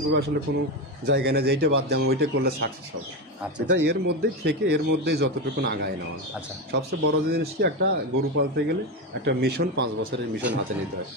আসলে কোনো জায়গা নেই যে এইটা বাদ দিয়ে আমি ওইটা করলে সাকসেস হবে। আচ্ছা এটা এর মধ্যেই থেকে এর মধ্যেই যতটুকু আগায় নেওয়া। আচ্ছা সবচেয়ে বড় জিনিস কি, একটা গরু পালতে গেলে একটা মিশন 5 বছরের মিশন হাতে নিতে হয়।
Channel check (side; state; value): both; normal; correlation 0.15